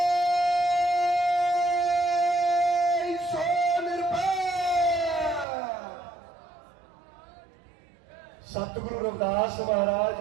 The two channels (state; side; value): drops out; left; at 5.5 s